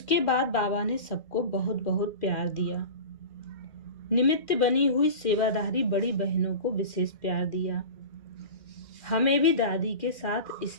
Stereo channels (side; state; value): right; late; 2.1 ms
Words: बाद बाबा ने सबको बहुत बहुत प्यार दिया। निमित्त बनी हुई सेवाधारी बड़ी बहनों को विशेष प्यार दिया। हमें भी दादी के साथ